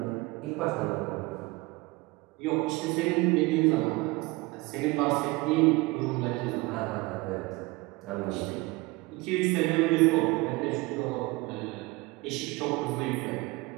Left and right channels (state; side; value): quieter; left; 23.2 dB